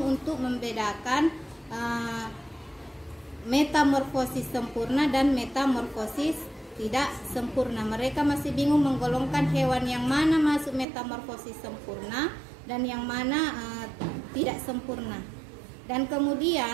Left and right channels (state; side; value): drops out; left; at 10.9 s